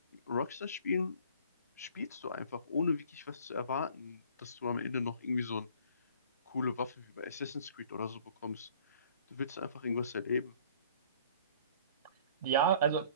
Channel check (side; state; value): both; inverted; correlation -0.52